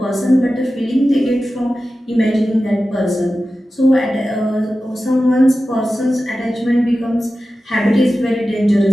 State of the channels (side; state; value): both; normal; correlation 0.94